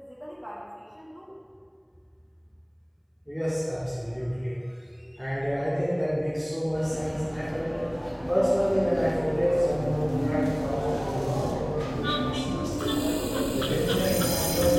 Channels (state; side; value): identical; both; correlation 1.00